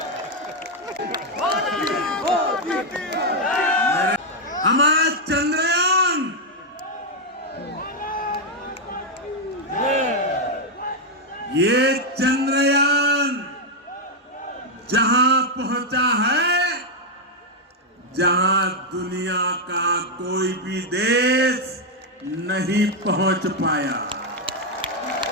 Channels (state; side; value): normal; both; correlation 0.01